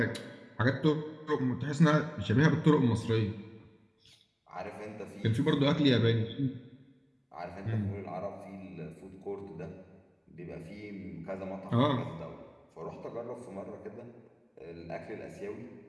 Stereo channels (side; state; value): both; identical; correlation 1.00